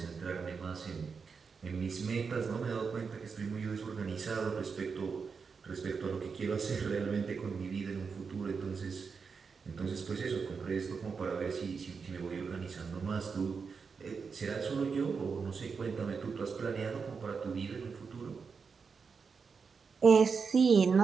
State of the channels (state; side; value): quieter; left; 5.4 dB